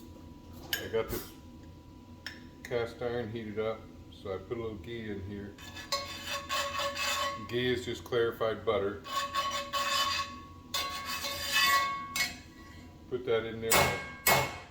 I got this cast iron heated up, so I put a little ghee in here. Ghee is just clarified butter. Put that in there.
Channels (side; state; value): both; identical; correlation 1.00